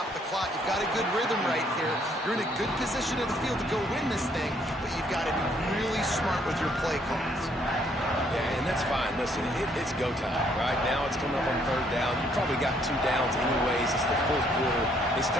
the clock. You've got a good rhythm right here. You're in a good position in the field to go win this thing, but you've got to be really smart with your play calls. Yeah, and that's fine. Listen, it's go time, right? Now it's coming up on third down. You probably got 2 downs anyways. It's the fourth quarter. It's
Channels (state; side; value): normal; both; correlation 0.67